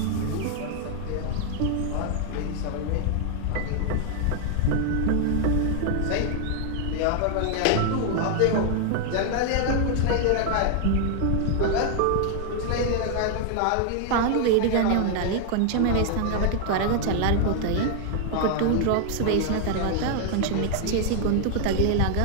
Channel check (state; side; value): different; both; correlation 0.00